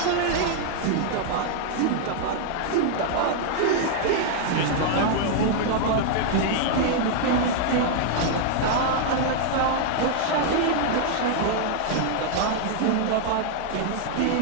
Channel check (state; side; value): different; both; correlation -0.01